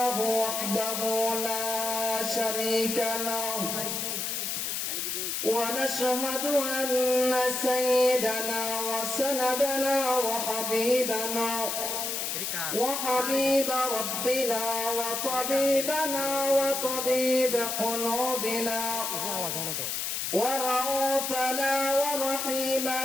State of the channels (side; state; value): left; noise; hiss, 2 dB below the sound